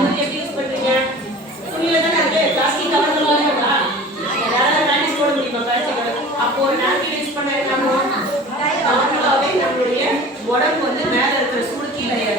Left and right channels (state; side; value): normal; both; correlation 0.40